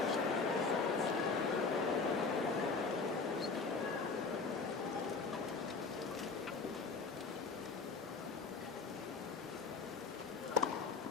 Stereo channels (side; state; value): right; quieter; 4.5 dB